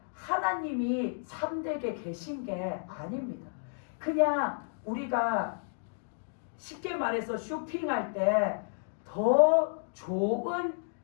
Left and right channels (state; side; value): silent; right; digital silence